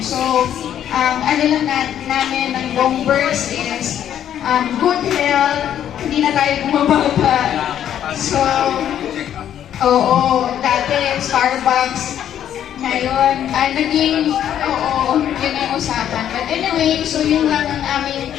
So, ano lang namin ng buong birds is good health, hindi na tayo bumababa. So, oo, dati Starbucks, ngayon, yun ang usapan. But anyway, so yun lang ang aming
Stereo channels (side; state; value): right; quieter; 10.3 dB